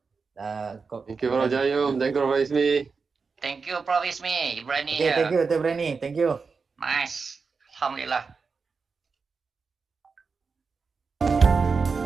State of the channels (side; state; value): left; quieter; 4.9 dB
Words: Thank you, Prof. Jayum. Thank you, Prof. Ismi. Thank you, Prof. Ismi. Ibrani Okay, thank here. you, Dr. Brani. Thank you. Nice. Alhamdulillah.